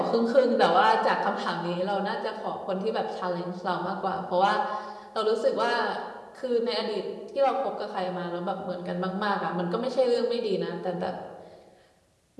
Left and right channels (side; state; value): both; identical; correlation 1.00